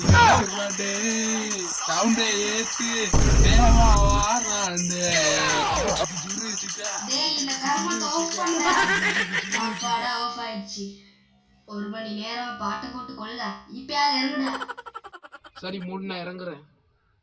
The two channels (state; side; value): identical; both; correlation 1.00